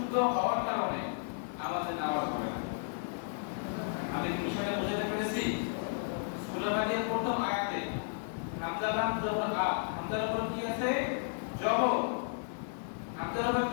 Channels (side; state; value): right; silent; digital silence